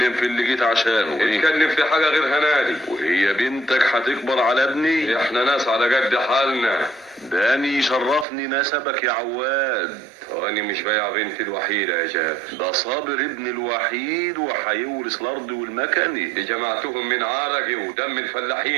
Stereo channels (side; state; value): left; drops out; at 8.2 s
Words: في اللي جيت عشانه. نتكلم في حاجة غير هنادي. وهي بنتك هتكبر على ابني؟ احنا ناس على قد حالنا. داني يشرفني نسبك يا عواد. وانا مش بايع بنتي الوحيدة يا جابر. ده صابر ابن الوحيد وهيورث الارض والمكنة. دي جمعتهم من عرقي ودم